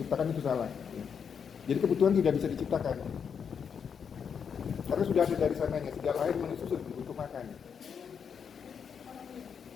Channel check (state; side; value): quieter; right; 7.0 dB